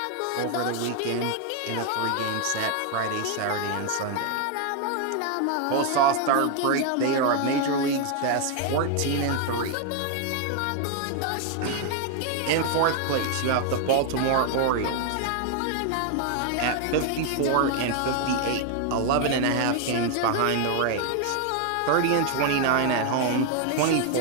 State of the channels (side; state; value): both; different; correlation 0.00